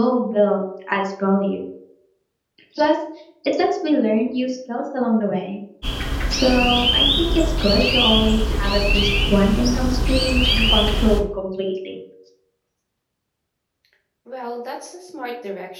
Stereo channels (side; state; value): both; identical; correlation 1.00